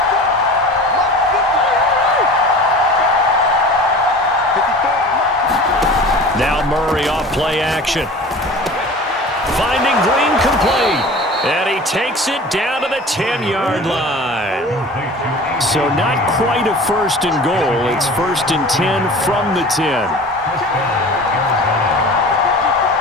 Now Murray off play action. Finding Green complete. And he takes it down to the 10-yard line. So not quite a 1st and goal. It's 1st and 10 from the 10.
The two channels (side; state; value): both; normal; correlation 0.39